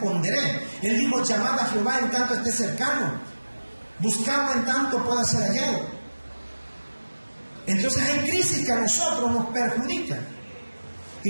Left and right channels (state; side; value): inverted; both; correlation -1.00